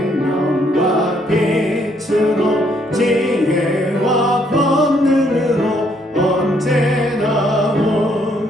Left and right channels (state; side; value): normal; both; correlation 0.69